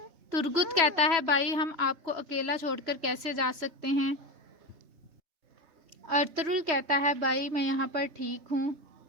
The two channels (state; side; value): late; left; 3.3 ms